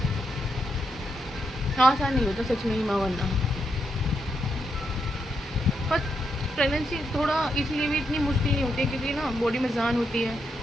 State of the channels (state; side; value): normal; both; correlation 0.81